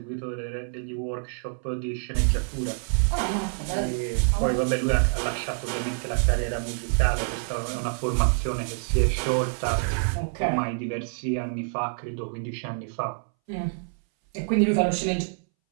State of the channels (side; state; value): left; silent; 60 dB below the other